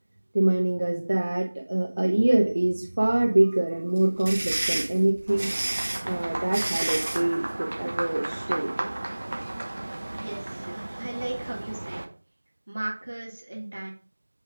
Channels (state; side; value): inverted; both; correlation -1.00